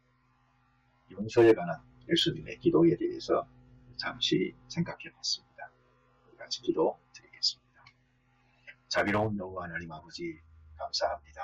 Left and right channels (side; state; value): both; identical; correlation 1.00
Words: 용서에 관한 예수님의 기도에 대해서 잠시 생각해 봤습니다. 우리 같이 기도 드리겠습니다. 자비로운 여호와 하나님 아버지